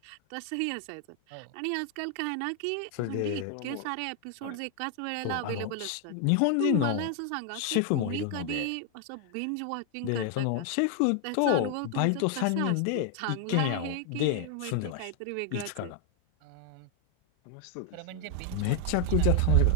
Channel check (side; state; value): both; different; correlation 0.00